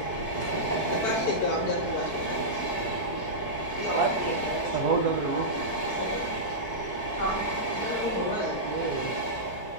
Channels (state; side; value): late; right; 4.6 ms